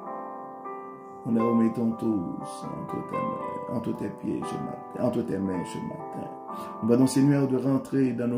Nous les remettons tous entre tes pieds ce matin, entre tes mains ce matin. Nous demandons, Seigneur, de rentrer dans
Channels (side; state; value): both; identical; correlation 1.00